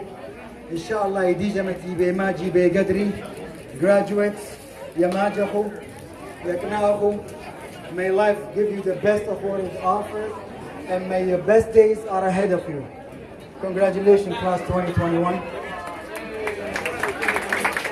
Inshallah, yidi jamati be maji be gadri. Graduates, yamajahu, yaknahu. May life give you the best of what is offered. And may your best days are ahead of you. Congratulations, class 2021.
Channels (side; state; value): both; identical; correlation 1.00